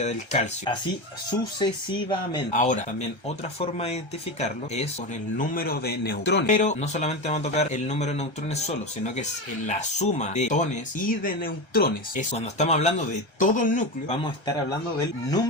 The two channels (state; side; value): late; right; 1.3 ms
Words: del calcio. Así sucesivamente. Ahora, también otra forma de identificarlo es con el número de neutrones. Pero no solamente vamos a tocar el número de neutrones solo, sino que es la suma de protones y de neutrones. Es cuando estamos hablando de todo el núcleo, vamos a estar hablando del